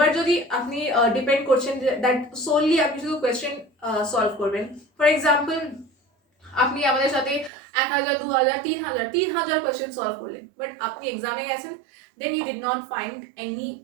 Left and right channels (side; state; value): left; drops out; at 7.5 s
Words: যদি আপনি ডিপেন্ড করছেন দ্যাট সোললি আপনি শুধু কোয়েশ্চেন সলভ করবেন, ফর এক্সাম্পল আপনি আমাদের সাথে 1000 2000 3000 কোয়েশ্চেন সলভ করলেন, বাট আপনি এক্সামে গেছেন, then you did not find any